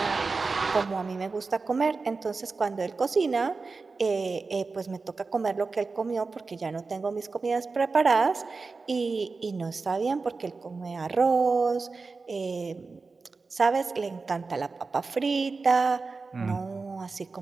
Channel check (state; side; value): quieter; left; 4.2 dB